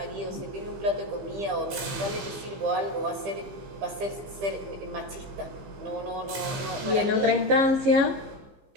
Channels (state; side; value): late; left; 16 ms